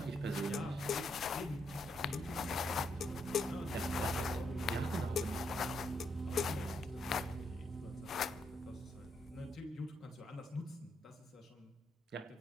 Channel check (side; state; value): both; normal; correlation 0.78